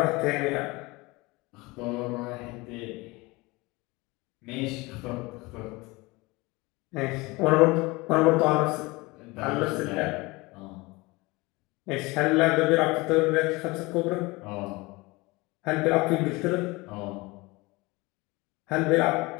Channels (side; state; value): right; quieter; 23.5 dB